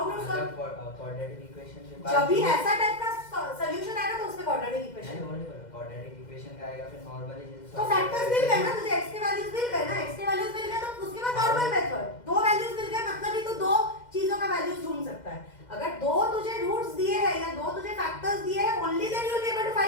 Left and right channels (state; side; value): late; right; 2.1 ms